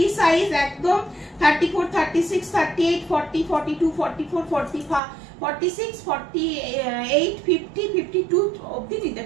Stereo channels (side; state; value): left; drops out; at 5.0 s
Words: সাইজ একদম 34, 36, 38, 40, 42, 44, 45, 46, 48, 50, 52 অবধি নিতে